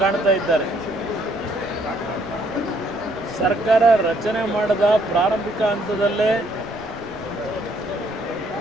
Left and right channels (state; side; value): noise; left; rumble, 22 dB below the sound